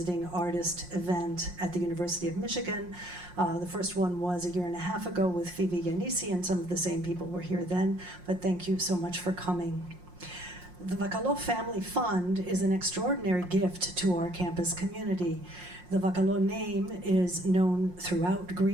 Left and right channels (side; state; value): left; late; 5.6 ms